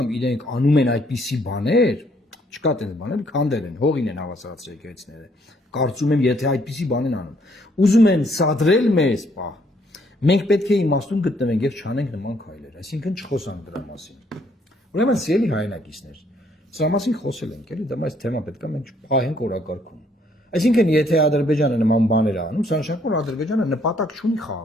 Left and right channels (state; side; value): normal; both; correlation 0.67